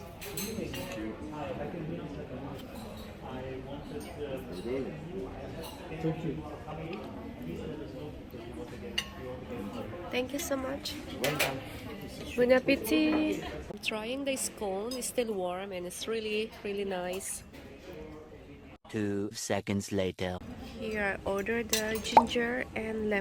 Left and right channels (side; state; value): both; identical; correlation 1.00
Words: Thank you. Thank you so much. Welcome. Bon appetit. I'm trying this cone. It's still warm and it's really, really nice. 2 seconds later. Here I ordered the ginger and